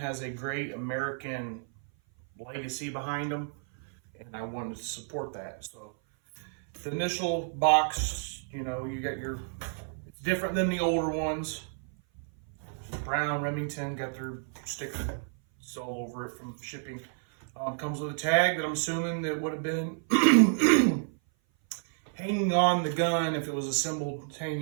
a great American legacy behind them, and I wanted to support that. So the initial box, you know, you got your, it's different than the older ones. Brown Remington got their sticker all over it from shipping. Comes with a tag that I'm assuming that would have been hanging on the gun if it was assembled,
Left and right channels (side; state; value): left; silent; 56 dB below the other